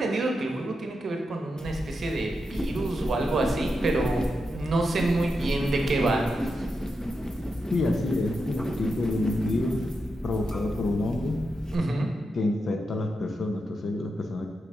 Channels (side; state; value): both; normal; correlation 0.87